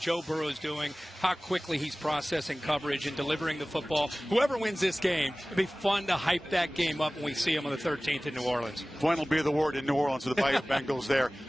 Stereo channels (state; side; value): normal; both; correlation 0.98